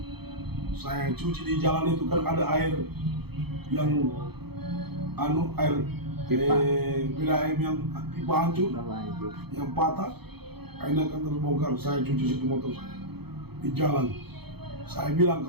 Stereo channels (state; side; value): late; left; 0.97 ms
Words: Saya cuci di jalan itu kan ada air yang bila air yang pipa hancur, yang patah, airnya kan terbongkar. Saya cuci situ motor saya di jalan. Saya bilang